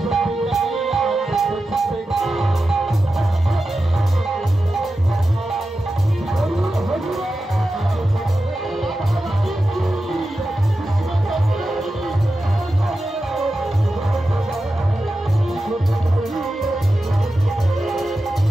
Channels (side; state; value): both; normal; correlation 0.92